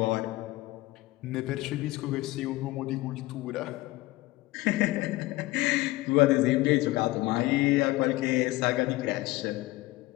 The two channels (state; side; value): quieter; right; 19.4 dB